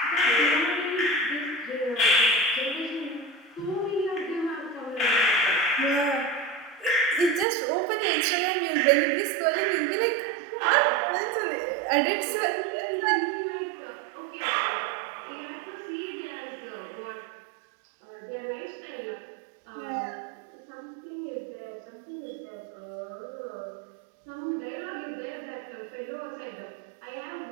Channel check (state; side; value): drops out; left; at 7.5 s